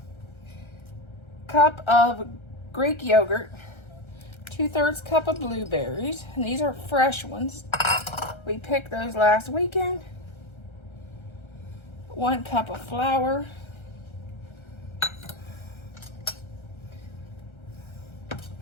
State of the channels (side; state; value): right; late; 1.3 ms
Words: cup of Greek yogurt, 2/3 cup of blueberries, and these are fresh ones. We picked those last weekend. 1 cup of flour,